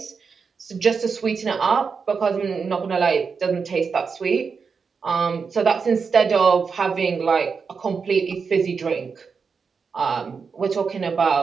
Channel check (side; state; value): left; quieter; 5.5 dB